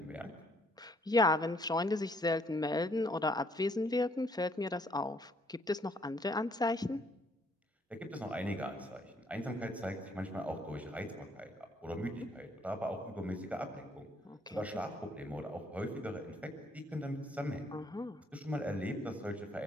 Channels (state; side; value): normal; both; correlation 0.66